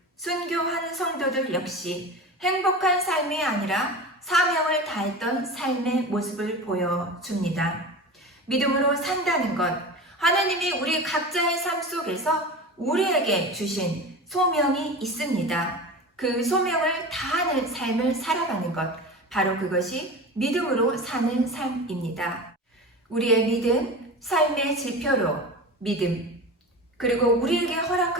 순교한 성도들 역시 행복한 삶이 아니라 사명을 다했던 삶의 모습을 보여줍니다. 믿음으로 산다는 것, 하나님이 우리 각자의 삶 속에서 우리에게 주신 소명이 있습니다. 그 소명을 다하는 삶을 살아가는 것, 바로 그것이 믿음으로 사는 삶입니다. 우리의 믿음, 삶의 지표로 믿음, 그리고 우리에게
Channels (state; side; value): normal; both; correlation 0.30